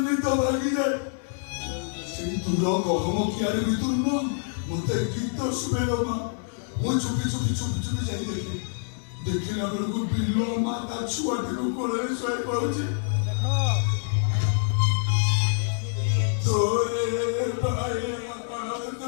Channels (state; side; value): silent; right; digital silence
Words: মৃত ভাগি যায় সেই তুলো কখনো কি আর ভিতর না মতে গীত শুনে মা ମୁଁ ଚୁପି ଯାଇ ଦେଖିଲା ବେଳକୁ ବିଲ ମା ତା ଛୁଆଟିକୁ କୋଳରେ ଶୋଇ ପଡୁଛି ତୋରେ